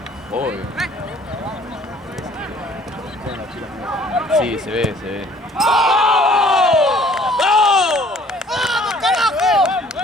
Obvio. Sí, se ve.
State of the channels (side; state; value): both; normal; correlation 0.55